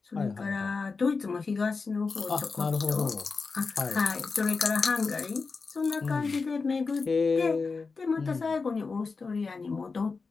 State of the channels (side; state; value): right; quieter; 4.5 dB